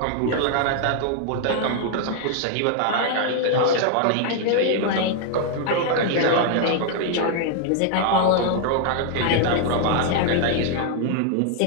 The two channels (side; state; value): both; different; correlation 0.00